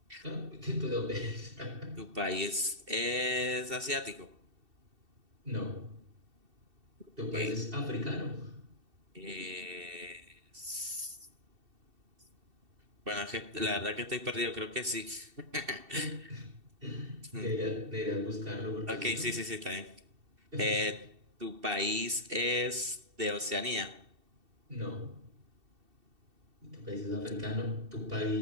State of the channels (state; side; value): late; left; 2.7 ms